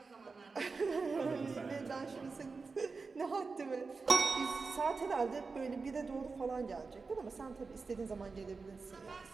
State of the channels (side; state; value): left; quieter; 4.4 dB